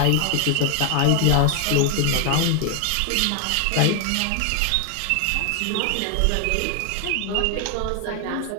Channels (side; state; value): both; different; correlation 0.00